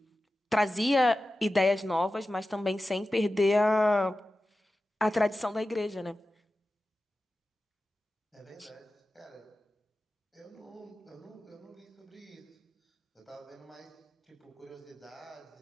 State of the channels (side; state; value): both; normal; correlation 0.94